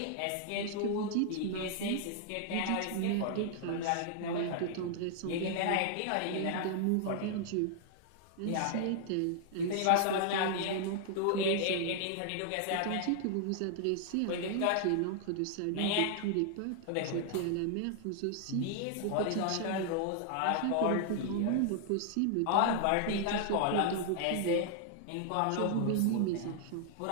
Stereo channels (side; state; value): both; different; correlation 0.00